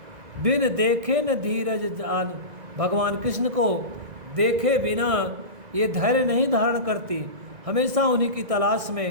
बिन देखे न धीरज जान, भगवान कृष्ण को देखे बिना ये धैर्य नहीं धारण करती, हमेशा उन्हीं की तलाश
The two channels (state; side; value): late; left; 2.0 ms